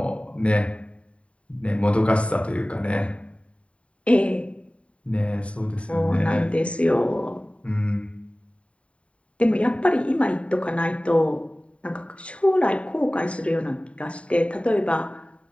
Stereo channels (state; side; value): late; right; 0.062 ms